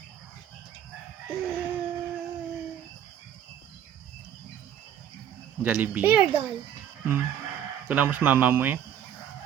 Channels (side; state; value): left; quieter; 9.8 dB